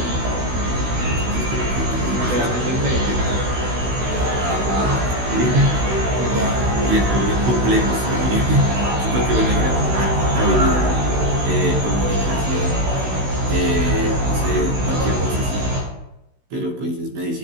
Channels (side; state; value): left; late; 16 ms